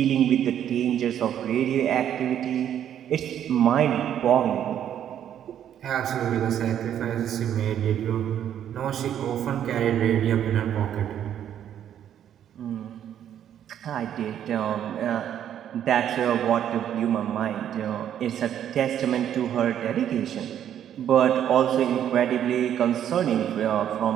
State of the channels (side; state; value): left; quieter; 10.1 dB